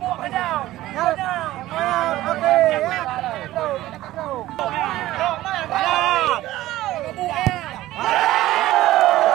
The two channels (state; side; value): quieter; left; 15.8 dB